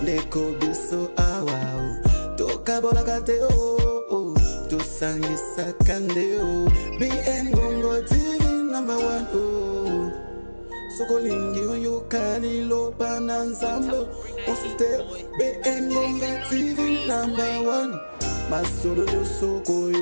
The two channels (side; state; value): both; inverted; correlation -1.00